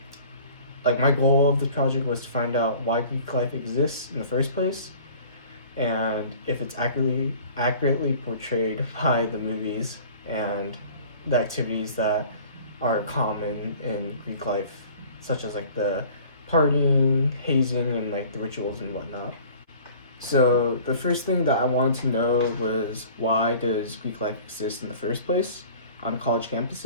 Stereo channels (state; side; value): inverted; both; correlation -0.47